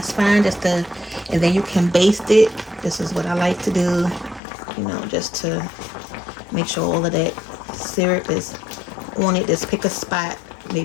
fine. Just to, and then you can baste it. This is what I like to do, you know, just to make sure all of that syrup is on it. Just pick a spot,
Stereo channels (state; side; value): drops out; right; at 4.4 s